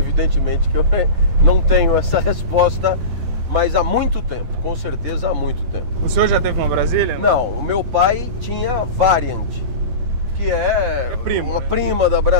que eu não tenho essa resposta, mas há muito tempo, com certeza há muito tempo. O senhor já teve uma Brasília? Não, o meu pai tinha Variant, que é uma prima da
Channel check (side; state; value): left; late; 11 ms